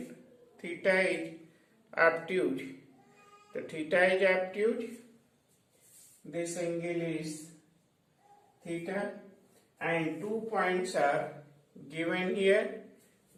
theta is obtuse, the theta is obtuse, this angle is theta, and 2 points are given here.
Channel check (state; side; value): identical; both; correlation 1.00